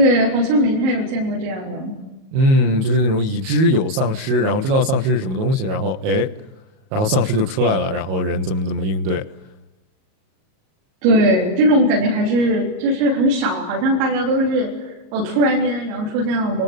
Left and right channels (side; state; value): left; late; 38 ms